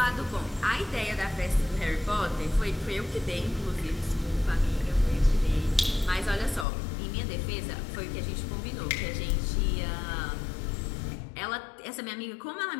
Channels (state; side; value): drops out; right; at 6.7 s